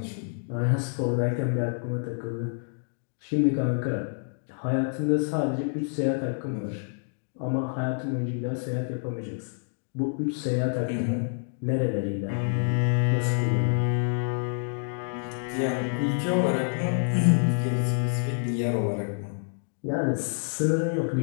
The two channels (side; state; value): right; silent; digital silence